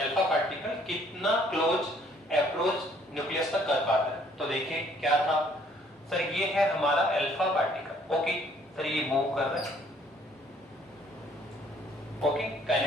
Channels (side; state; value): both; normal; correlation 0.62